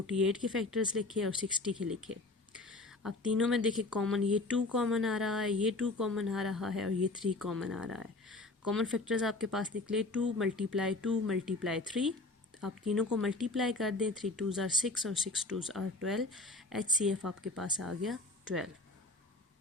के फैक्टर्स लिखे और 60 के लिखे। अब तीनों में देखिए कॉमन, ये 2 कॉमन आ रहा है, ये 2 कॉमन आ रहा है और ये 3 कॉमन आ रहा है। कॉमन फैक्टर्स आपके पास निकले 2 मल्टीप्लाई 2 मल्टीप्लाई 3। आप तीनों को मल्टीप्लाई कर दें, 3 2s आर 6 और 6 2s आर 12। HCF आपके पास आ गया 12।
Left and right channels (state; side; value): quieter; right; 3.0 dB